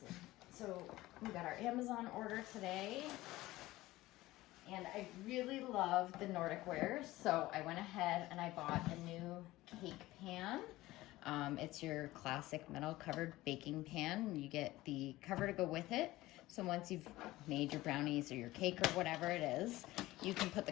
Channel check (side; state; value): right; quieter; 17.7 dB